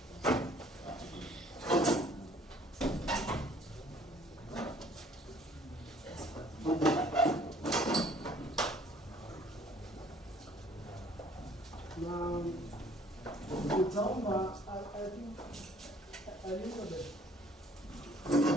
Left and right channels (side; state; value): both; normal; correlation 0.57